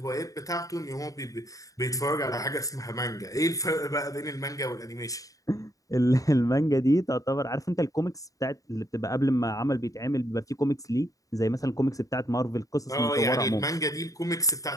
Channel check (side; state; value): right; late; 0.17 ms